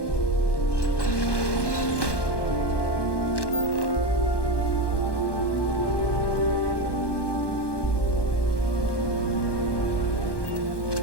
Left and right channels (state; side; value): late; right; 1.1 ms